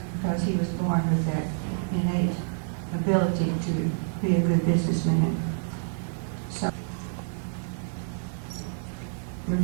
because he was born with that innate ability to be a good businessman. So,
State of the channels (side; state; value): left; silent; digital silence